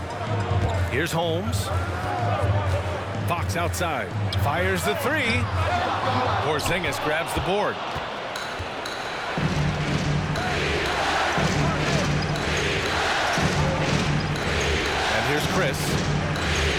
Here's Holmes. Fox outside. Fires the 3. Porzingis grabs the board. And here's Chris.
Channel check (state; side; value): identical; both; correlation 1.00